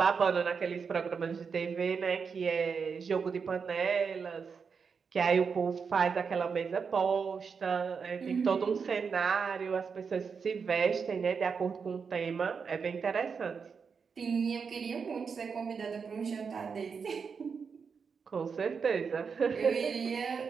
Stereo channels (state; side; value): quieter; left; 5.8 dB